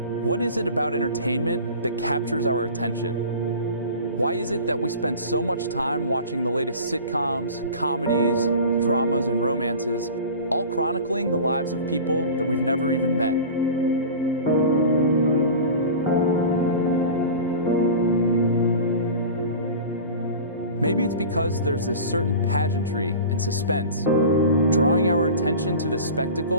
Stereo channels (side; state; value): both; inverted; correlation -0.36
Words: What is it about entertainment that captures our attention? Why is it that we spend so much time watching the latest sitcoms, comedies, dramas, and romances, all chronicling the lives of people that we've never even met? Maybe it's because there's this certain pageantry and suspense, drawing our attention to this